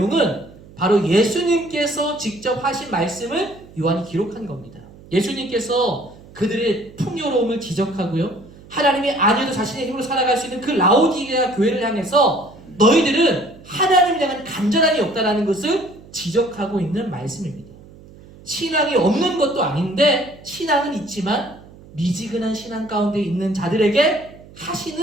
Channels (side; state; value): right; noise; hum, 21 dB below the sound